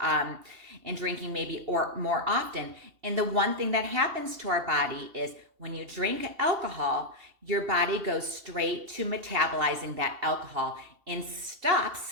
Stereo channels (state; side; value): late; left; 2.7 ms